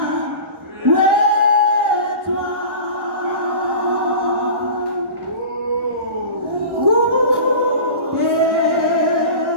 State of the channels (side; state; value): left; late; 1.1 ms